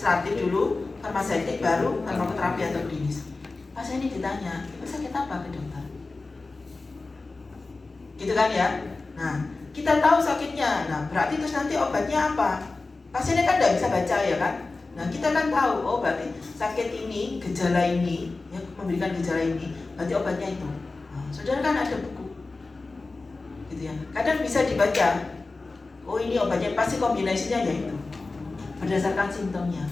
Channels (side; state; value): right; quieter; 3.6 dB